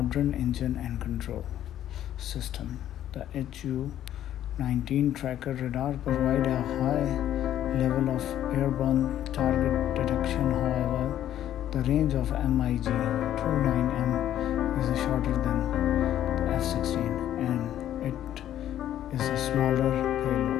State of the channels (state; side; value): quieter; right; 11.6 dB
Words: engine and control system. The Su-19 tracker radar provides a high level of airborne target detection. However, the range of MiG-29M is shorter than the F-16 and it is a smaller